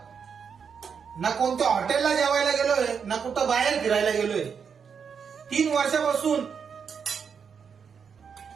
ना कोणत्या हॉटेलला जेवायला गेलोय ना कुठं बाहेर फिरायला गेलोय. 3 वर्षापासून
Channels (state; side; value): quieter; left; 6.6 dB